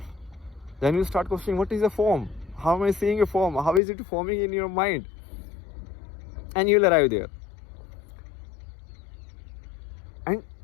then you start questioning, what is a form? How am I seeing a form? How is it forming in your mind? And you'll arrive there. And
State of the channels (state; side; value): drops out; right; at 3.8 s